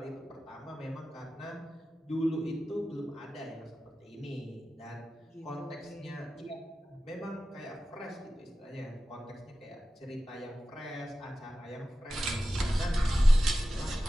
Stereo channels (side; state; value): both; normal; correlation 0.94